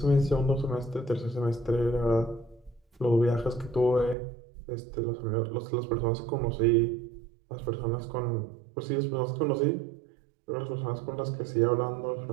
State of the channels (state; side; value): drops out; left; at 4.2 s